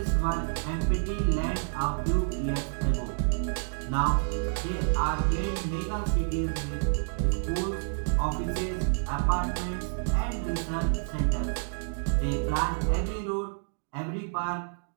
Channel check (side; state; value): left; silent; digital silence